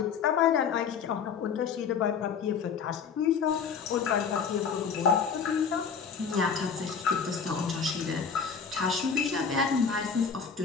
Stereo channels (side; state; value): right; quieter; 6.3 dB